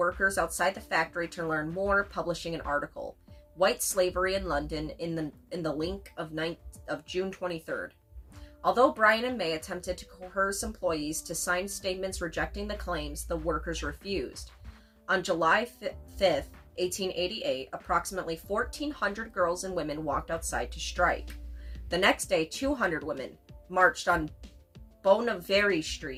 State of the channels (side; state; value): both; identical; correlation 1.00